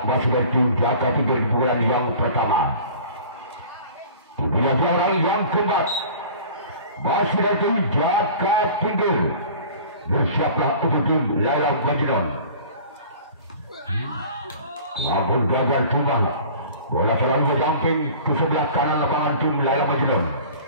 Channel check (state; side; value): inverted; both; correlation -0.44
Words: Masih dari tim Jaka Tinggi di bulan yang pertama. Bila orang yang keempat. Masih dari tim Jaka Tinggi. Bersiaplah untuk tim Laila Majnun. Namun gagal tumbang. Bola selalu berjumping ke sebelah kanan lapangan tim Laila Majnun.